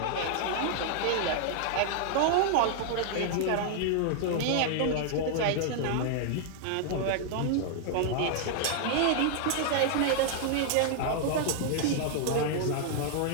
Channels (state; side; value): different; both; correlation -0.01